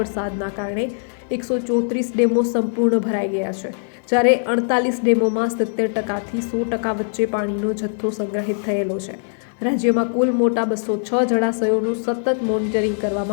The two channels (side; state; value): right; silent; 63 dB below the other